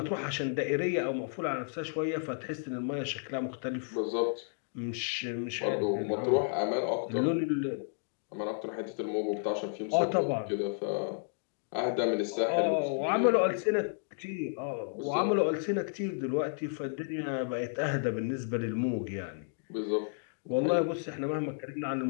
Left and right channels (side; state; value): right; silent; digital silence